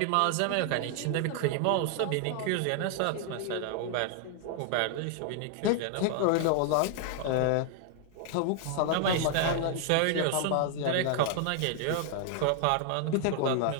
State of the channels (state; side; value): different; both; correlation 0.00